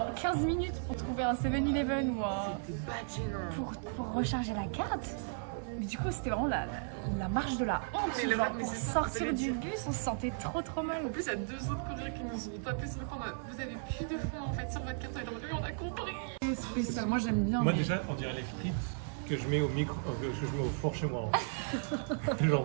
15 minutes pour trouver un 7-Eleven ou un... pour recharger la carte. Mais du coup c'était vraiment la marche de la honte. Mais genre, mais pour c'est sortir du bus on se sentait trop mal. En plus, il y a 2 autres Coréens qui nous ont tapé sur le compte. Vous avez plus de fonds en fait sur votre carte. Et on a compris. C'est spécial. Moi j'aime bien. Moi déjà, on dirait les frites que je mets au que je mets au four chez moi. Hein.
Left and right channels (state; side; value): silent; left; digital silence